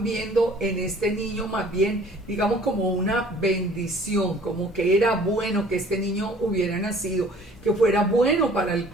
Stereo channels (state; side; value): normal; both; correlation 0.52